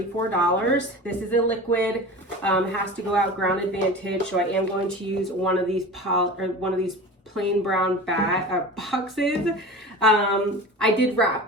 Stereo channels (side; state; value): both; normal; correlation 0.34